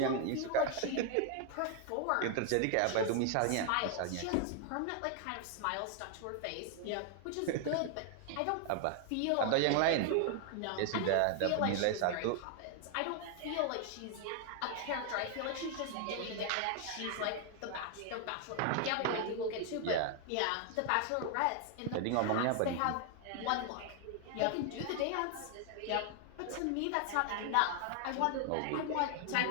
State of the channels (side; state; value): both; different; correlation 0.00